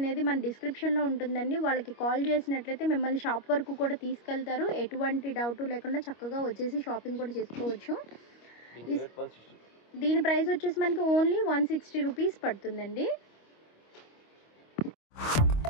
మన డిస్క్రిప్షన్లో ఉంటుందండి. వాళ్ళకి కాల్ చేసినట్లయితే మిమ్మల్ని షాప్ వరకు కూడా తీసుకెళ్తారు. ఎటువంటి డౌట్ లేకుండా చక్కగా వచ్చేసి షాపింగ్ కూడా చేసుకోవచ్చు. దీని ప్రైస్ వచ్చేసి మనకి ఓన్లీ 160 రూపీస్ పడుతుందండి.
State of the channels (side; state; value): right; late; 25 ms